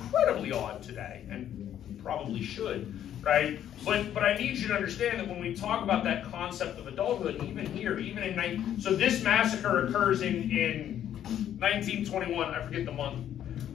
odd today, and probably should, right? But I need you to understand that when we talk about that concept of adulthood, even here, even in so this massacre occurs in 1921. I forget the month,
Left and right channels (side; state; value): right; quieter; 10.6 dB